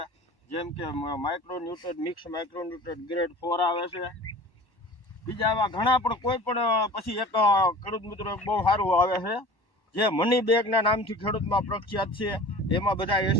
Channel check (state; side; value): late; right; 1.1 ms